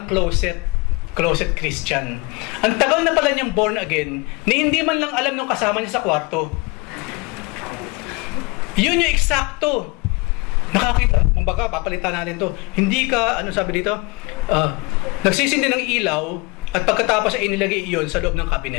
closet Christian. Ang tagal na pala niyang born again, na hindi man lang alam nung kasama niya sa kwarto. Yun yung eksakto. Nakakita, kumbaga, papalitan natin to. Hindi ka, sabi dito, nagsisindi ng ilaw, at pagkatapos ay inilagay iyon sa loob ng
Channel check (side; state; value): right; quieter; 26.3 dB